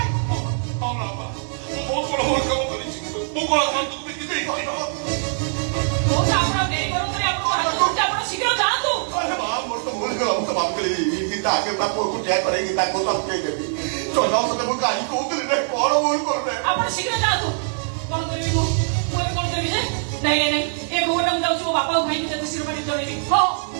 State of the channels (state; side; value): silent; left; digital silence